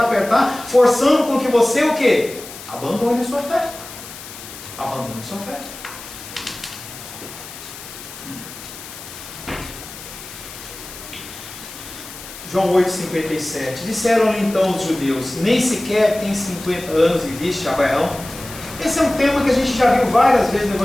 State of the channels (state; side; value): noise; left; hiss, 14 dB below the sound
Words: forçando com que você o quê? Abandone a sua fé. Abandone a sua fé. João 8,57. Disseram-lhe então os judeus: nem sequer tem 50 anos e viste Abraão? Esse é um tema que a gente já viu várias vezes no